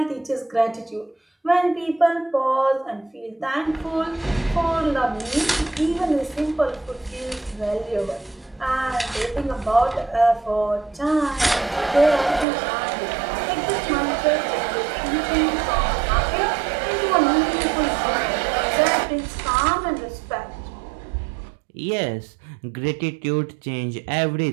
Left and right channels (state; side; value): drops out; left; at 12.5 s